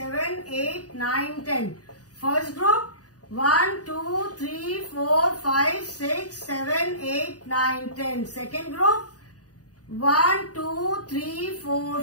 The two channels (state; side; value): late; right; 0.68 ms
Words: 8, 9, 10. First group 1, 2, 3, 4, 5, 6, 7, 8, 9, 10. Second group 1, 2, 3, 4,